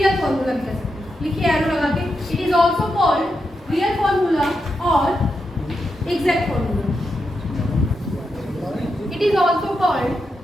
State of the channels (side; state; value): both; normal; correlation 0.86